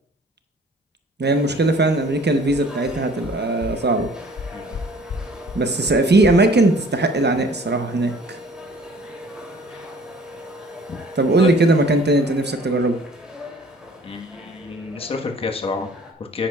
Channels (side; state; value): both; normal; correlation 0.52